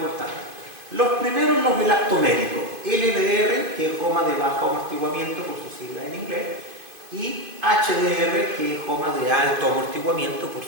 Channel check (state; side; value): late; left; 2.5 ms